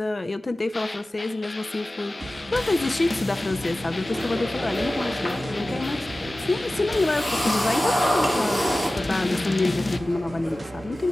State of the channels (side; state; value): both; normal; correlation 0.96